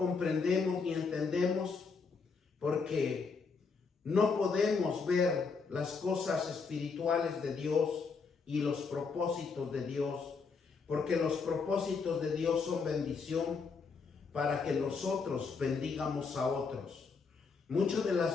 ni entendemos porque no podemos ver las cosas espirituales de Dios y los propósitos de Dios, porque los propósitos de Dios son bendición para que nosotros bendigamos a otros. Muchas de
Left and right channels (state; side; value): quieter; right; 5.0 dB